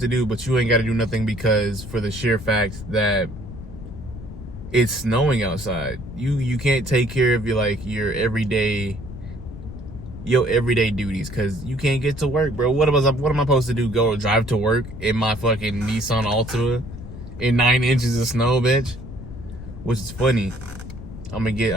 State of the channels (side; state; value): left; noise; rumble, 12 dB below the sound